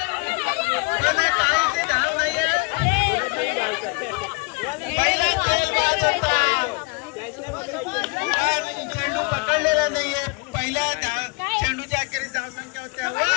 धाव नाहीये. पहिला चेंडू पकडलेला नाहीये. पहिल्या चेंडूच्या अखेरीस धाव संख्या होत्या.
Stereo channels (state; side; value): quieter; right; 30.0 dB